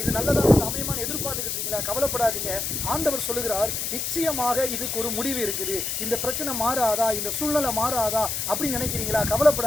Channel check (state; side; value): noise; left; hiss, 2 dB below the sound